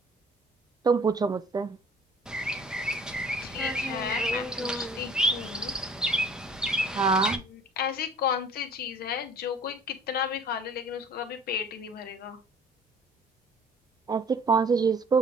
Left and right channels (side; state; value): both; normal; correlation 0.51